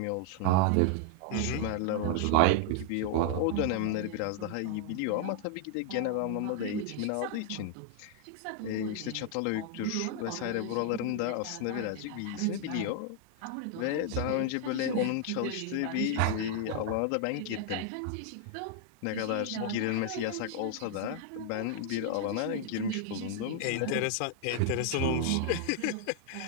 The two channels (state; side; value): different; both; correlation 0.00